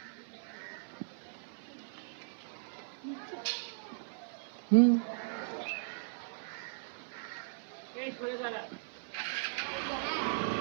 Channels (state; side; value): silent; left; 53 dB below the other